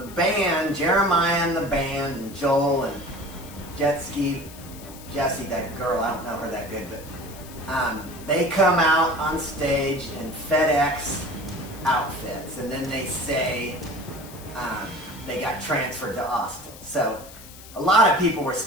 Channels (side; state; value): left; noise; hiss, 18 dB below the sound